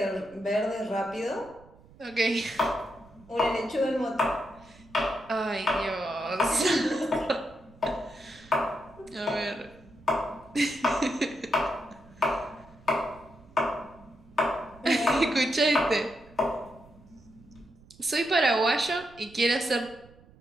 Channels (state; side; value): noise; right; rumble, 25 dB below the sound